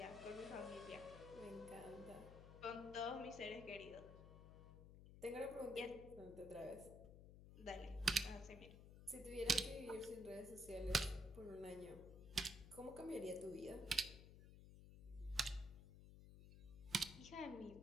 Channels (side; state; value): left; noise; hum, 14 dB below the sound